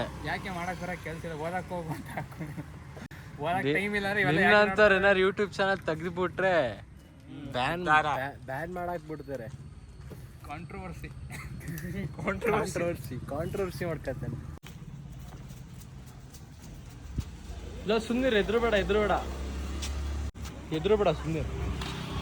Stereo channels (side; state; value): both; identical; correlation 1.00